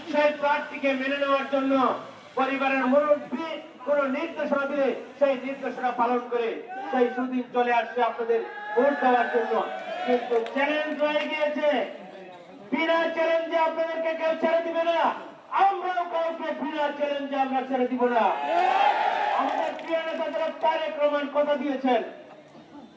সেই প্রার্থীকে মেনে নেওয়ার জন্য পরিবারের মুরব্বী কোন নির্দেশনা দিলে সেই নির্দেশনা পালন করে সেই সুদিন চলে আসছে আপনাদের ভোট দেওয়ার জন্য। কিন্তু চ্যালেঞ্জ রয়ে গিয়েছে, বিনা চ্যালেঞ্জে আপনাদেরকে কেউ ছেড়ে দিবে না, আমরাও কাউকে বিনা চ্যালেঞ্জে আমরা ছেড়ে দিব না। আমাদের প্রিয় নেতা যারা তারেক রহমান কথা দিয়েছেন,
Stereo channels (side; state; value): both; identical; correlation 1.00